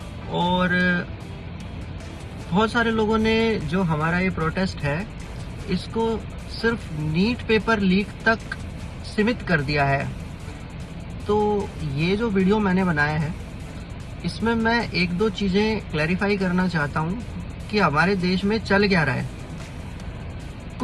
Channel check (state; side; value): identical; both; correlation 1.00